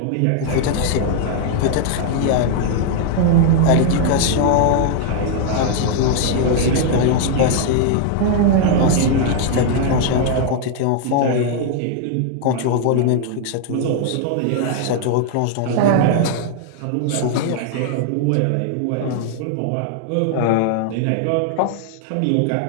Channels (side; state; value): both; different; correlation 0.00